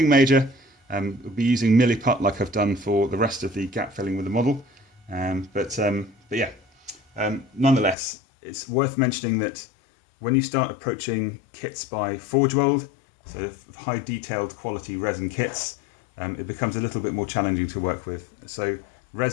major. We'll be using Milliput like I've done for the rest of the gap filling with the model. But yeah, nonetheless, it's worth mentioning that when you start approaching kits by Forgeworld, so high detailed quality resin kits, it becomes a little bit more challenging to work with. So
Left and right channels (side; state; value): right; drops out; at 8.0 s